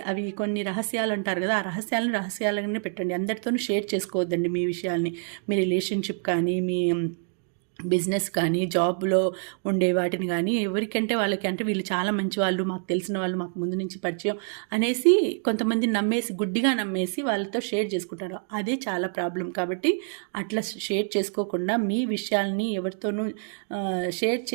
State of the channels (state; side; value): silent; left; 55 dB below the other